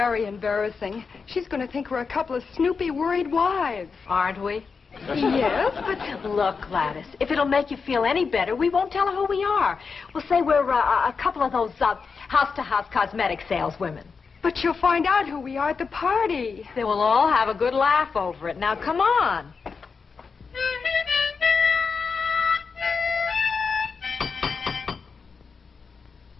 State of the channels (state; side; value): quieter; right; 5.2 dB